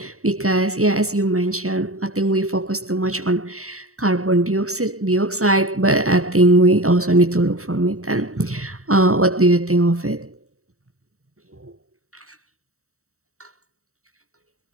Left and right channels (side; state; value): left; late; 0.64 ms